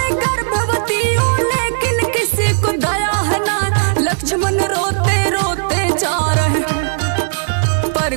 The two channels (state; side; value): silent; left; 69 dB below the other